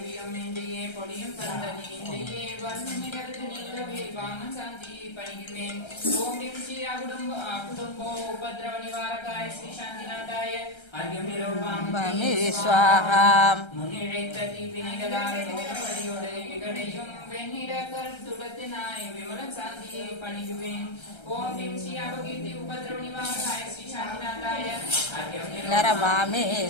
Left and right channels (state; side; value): late; right; 1.3 ms